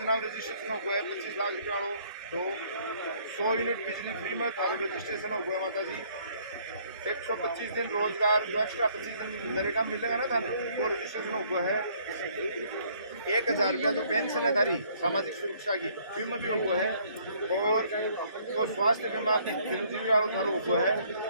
में रजिस्ट्रेशन हो गया 25 लाख रुपया वालों। 2 100 यूनिट बिजली फ्री में थारो रजिस्ट्रेशन हो गया माता जी। 125 दिन रोजगार जो एक्स्ट्रा 25 दिन मेरे काम मिलेगा ना थाने वो रजिस्ट्रेशन हो गया है। 1000 रुपया जो पेंशन है थारी सामाजिक सुरक्षा की बीमा भी हो है। और तो स्वास्थ्य बीमा चिरंजीवी वालों थारो हो है।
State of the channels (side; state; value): both; inverted; correlation -0.63